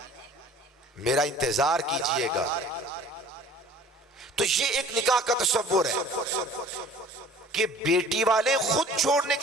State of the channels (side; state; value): both; normal; correlation 0.49